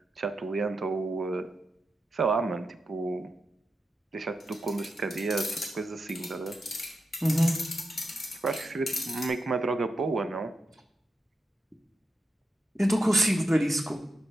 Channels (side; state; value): both; normal; correlation 0.88